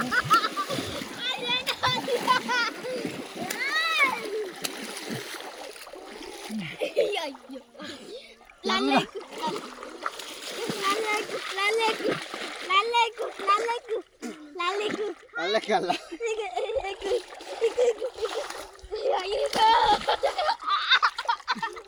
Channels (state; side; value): identical; both; correlation 1.00